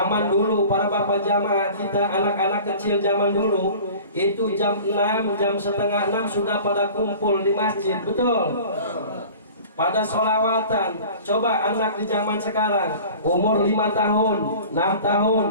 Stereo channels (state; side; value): inverted; both; correlation -0.42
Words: dulu para bapak jamaah kita, anak-anak kecil zaman dulu itu jam 6, jam setengah 6 sudah pada kumpul di masjid, betul? pada sholawatan. Coba anak di zaman sekarang umur 5 tahun, 6 tahun,